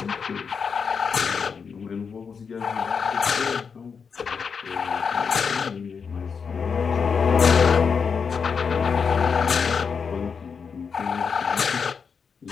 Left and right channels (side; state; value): right; quieter; 5.9 dB